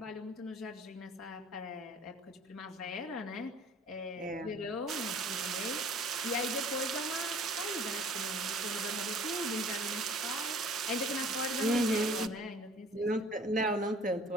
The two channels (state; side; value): normal; both; correlation 0.50